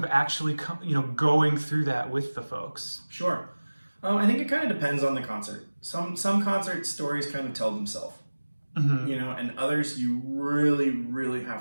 actually going through that with the folks? Sure. I think it kind of depends on the concert. Some concert stories kind of tell themselves, and others you really, really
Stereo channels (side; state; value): both; inverted; correlation -1.00